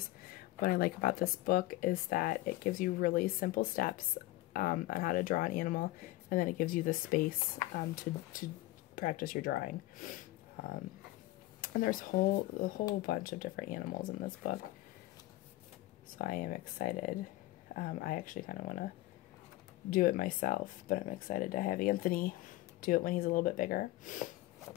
What I like about this book is that it gives you really simple steps on how to draw an animal, and then it gives you the space to practice your drawing. And there's a whole bunch of different animals in this book. So I am excited. I actually kind of want to do it myself, but I'm excited to have Anthony do it when he's a little bit bigger.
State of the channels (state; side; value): quieter; right; 17.6 dB